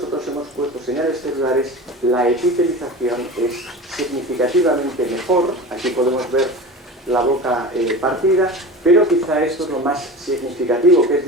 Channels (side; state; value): both; normal; correlation 0.32